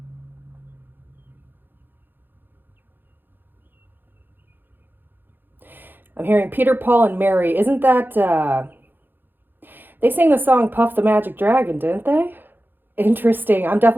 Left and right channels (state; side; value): late; left; 0.095 ms